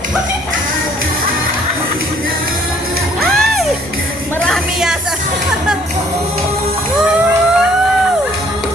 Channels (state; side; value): noise; right; rumble, 23 dB below the sound